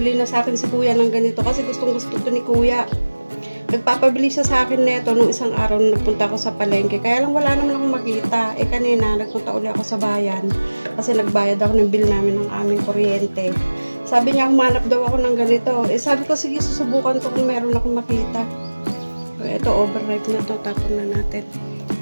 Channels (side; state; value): both; inverted; correlation -1.00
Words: na sa akin si kuya ng ganito kasi gustong gusto to ni kuya. Nagpapabili siya sa akin neto noong isang araw na nagpunta ako sa palengke. Kaya lang wala naman akong makita. Kanina, nagpunta uli ako sa bayan kasi nagbayad ako ng bill namin ng aming kuryente. Sabi niya, humanap daw ako ng ganito. Sabi ko, sige, susubukan ko kung meron akong makita. Ito, overripe na to. Tapon na natin.